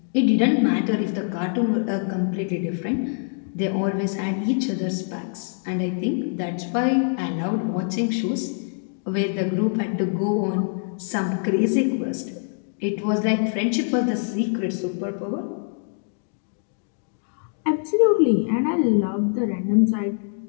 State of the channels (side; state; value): right; silent; digital silence